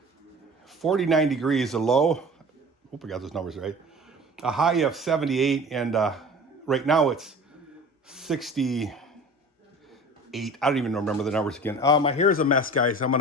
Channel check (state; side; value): normal; both; correlation 0.40